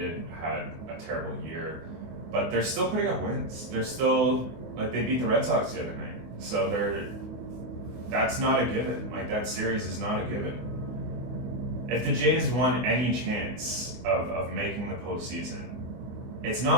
had a terrible year, but they're still putting up wins. They're still, they beat the Red Sox the other night. So that's not a given. That series is not a given. If the Jays won any chance of making the postseason, it's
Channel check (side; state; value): left; late; 24 ms